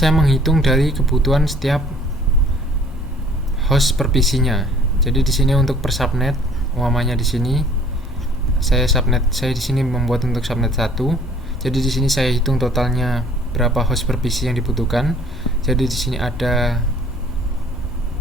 menghitung dari kebutuhan setiap host per PC-nya. Jadi di sini untuk per subnet, umpamanya di sini saya di sini membuat untuk subnet 1. Jadi di sini saya hitung totalnya berapa host per PC yang dibutuhkan. Jadi di sini ada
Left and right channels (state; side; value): normal; both; correlation 0.55